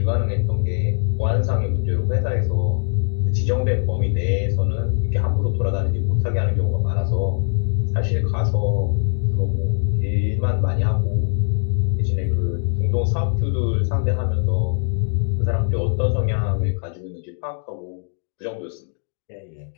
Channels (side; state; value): right; silent; 62 dB below the other